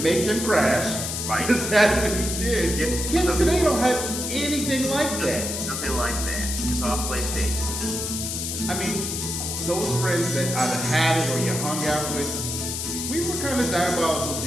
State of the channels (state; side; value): noise; left; hiss, 4 dB below the sound